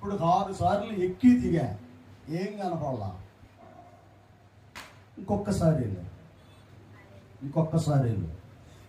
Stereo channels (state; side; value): identical; both; correlation 1.00